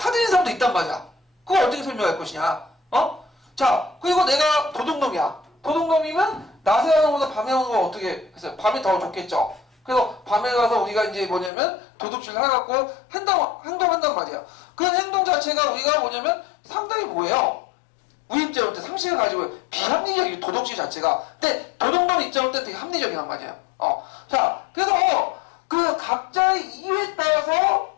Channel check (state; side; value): drops out; right; at 11.5 s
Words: 사람도 있단 말이야. 그걸 어떻게 설명할 것이냐? 자, 그리고 내가 도둑놈이야. 도둑놈이면 낮에 하는 것보다 밤에 하는 거 어떻게 했어요? 밤이 더 좋겠죠. 그래서 밤에 가서 우리가 이제 뭐냐면 도둑질 해갖고 행동한단 말이야. 그런 행동 자체가 우리가 뭐냐면 상당히 뭐예요? 우리 입장으로 때 상식을 가지고 비합리적인 도덕질 자체가. 근데 도덕론 입장으로 때 되게 합리적이란 말이에요. 자, 그래서 그 각자의 이유에 따라서